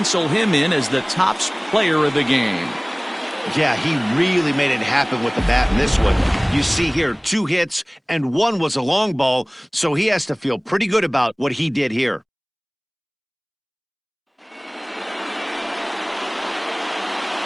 him in as the top player of the game. Yeah, he really made it happen with the bat in this one. You see here, 2 hits, and 1 was a long ball, so he has to feel pretty good about what he did here.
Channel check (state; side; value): identical; both; correlation 1.00